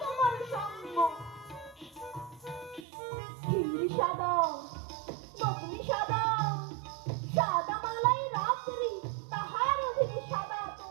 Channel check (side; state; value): left; drops out; at 2.9 s